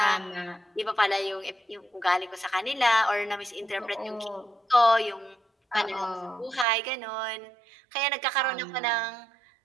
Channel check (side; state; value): left; drops out; at 6.7 s